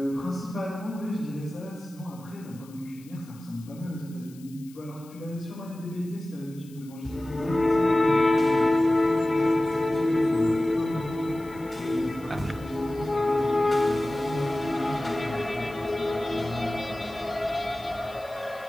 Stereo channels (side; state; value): left; noise; hiss, 25 dB below the sound